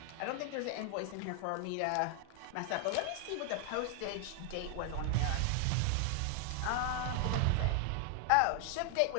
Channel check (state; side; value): different; both; correlation 0.00